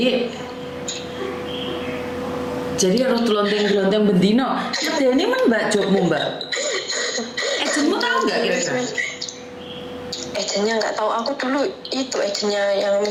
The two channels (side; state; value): both; identical; correlation 1.00